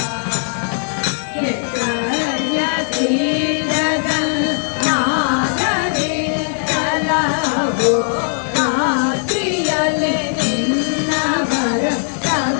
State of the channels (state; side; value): silent; right; 67 dB below the other